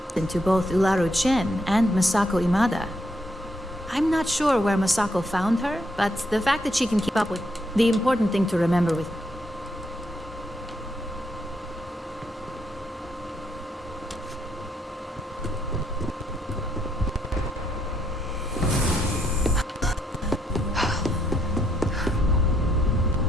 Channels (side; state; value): both; normal; correlation 0.75